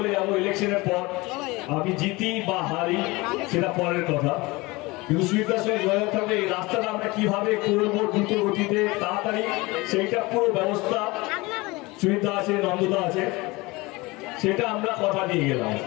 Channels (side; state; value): right; quieter; 22.9 dB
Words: যাবো, ইলেকশনের পর আমি জিতি বা হারি সেটা পরের কথা, কিন্তু সুবিধার সঙ্গে যোগাযোগ থাকবে এই রাস্তাটা আমরা কিভাবে করবো দ্রুত গতিতে তাড়াতাড়ি, সেইটা পুরো ব্যবস্থা সুবিধা আছে, নন্দদা আছে, সেটা আমরা কথা দিয়ে গেলাম।